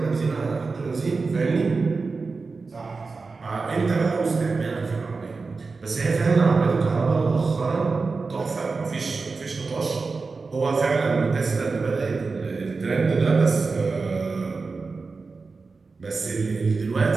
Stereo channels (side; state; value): left; quieter; 4.2 dB